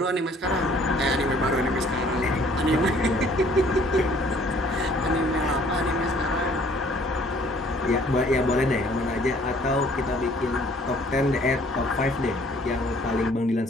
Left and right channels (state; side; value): normal; both; correlation 0.58